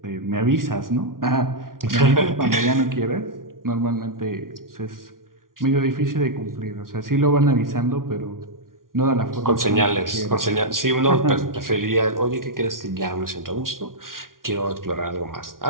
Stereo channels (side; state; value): left; late; 0.91 ms